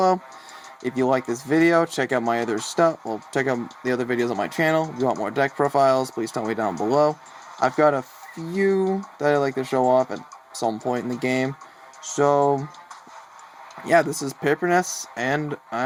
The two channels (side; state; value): both; identical; correlation 1.00